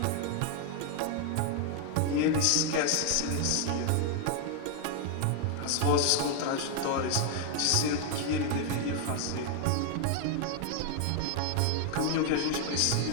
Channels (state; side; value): different; both; correlation 0.00